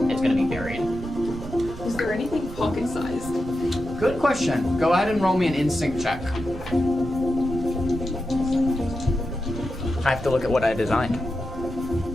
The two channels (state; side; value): noise; right; rumble, 12 dB below the sound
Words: going to be buried. Is there anything pocket-sized? Good question. Go ahead and roll me an instinct check. I have to look at what I designed.